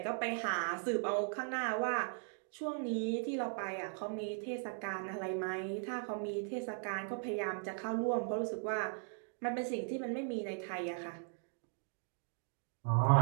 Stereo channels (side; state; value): left; silent; 52 dB below the other